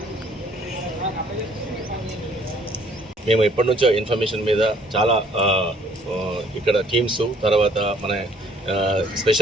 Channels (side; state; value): both; normal; correlation 0.60